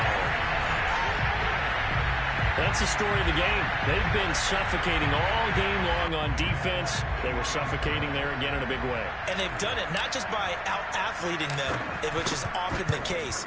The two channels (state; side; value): identical; both; correlation 1.00